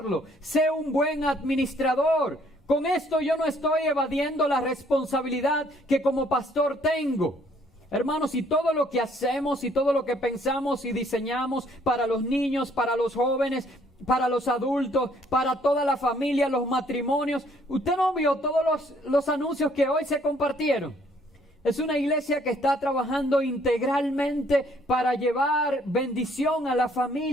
Sé un buen administrador. Con esto yo no estoy evadiendo la responsabilidad que como pastor tengo. Hermanos, y todo lo que hacemos y todo lo que pensamos y diseñamos para los niños, para los jóvenes, para los adultos, para toda la familia, los matrimonios. ¿Usted no vio todos los anuncios que hoy se compartieron? Es una iglesia que está trabajando integralmente para llevar bendición a la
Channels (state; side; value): normal; both; correlation 0.63